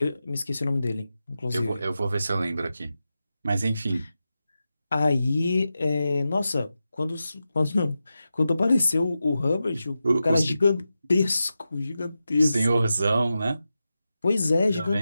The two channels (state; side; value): inverted; both; correlation -0.91